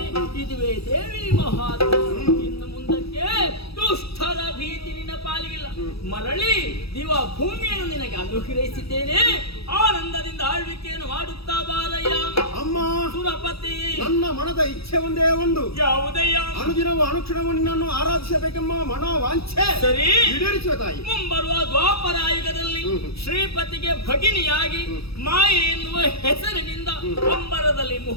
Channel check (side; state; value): right; late; 0.77 ms